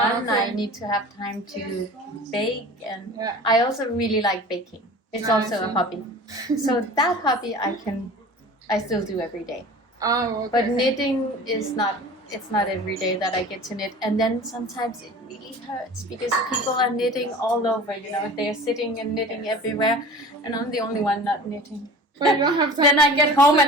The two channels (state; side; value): normal; both; correlation 0.39